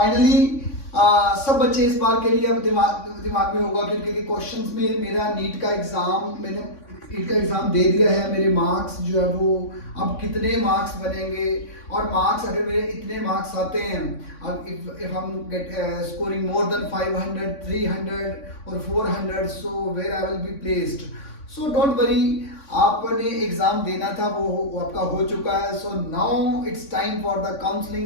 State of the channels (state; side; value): late; right; 3.6 ms